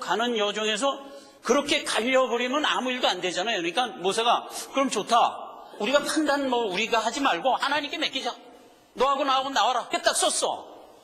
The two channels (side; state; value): both; identical; correlation 1.00